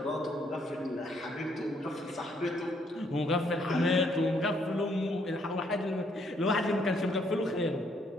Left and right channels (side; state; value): both; normal; correlation 0.69